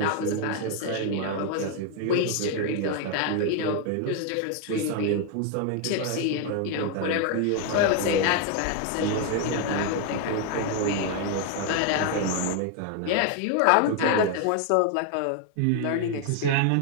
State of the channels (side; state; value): both; different; correlation 0.01